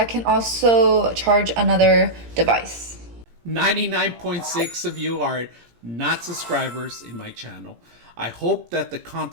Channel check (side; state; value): left; late; 17 ms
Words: can also charge another device. 99.6 of you are not subscribers in my channel. I hope that the